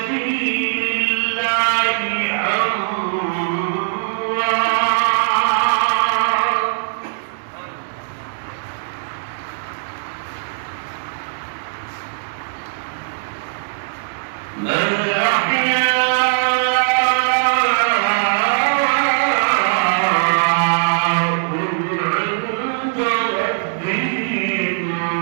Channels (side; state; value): left; silent; digital silence